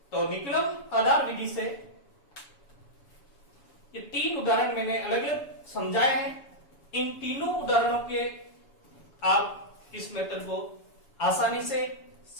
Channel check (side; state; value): right; late; 7.1 ms